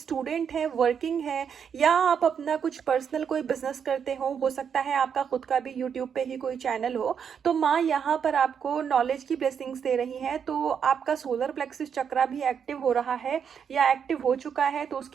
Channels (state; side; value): quieter; left; 7.4 dB